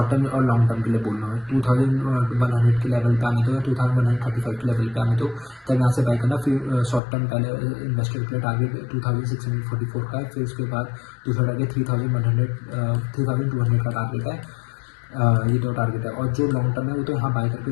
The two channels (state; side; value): drops out; right; at 7.0 s